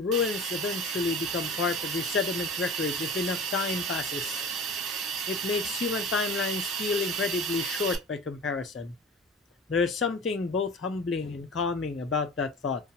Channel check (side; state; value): both; normal; correlation 0.37